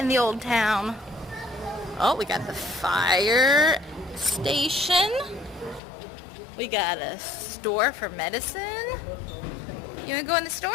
the old town. Oh, we got the fire station. We got a store for medicine. You want to go in the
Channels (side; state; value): right; drops out; at 5.8 s